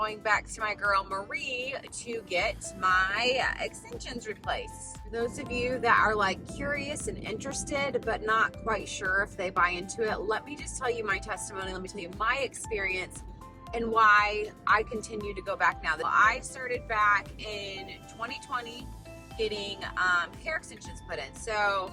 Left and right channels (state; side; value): identical; both; correlation 1.00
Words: back to my girl Marie to get my extensions replaced. For those of you that are like curious and interested but not quite sure if they buy into it, let me just tell you my testimony. Let me tell you my experience and why I continue to go back now. I started back in 2020 getting hair extensions put in. So